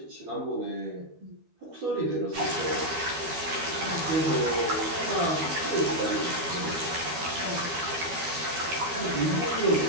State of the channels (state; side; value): late; left; 12 ms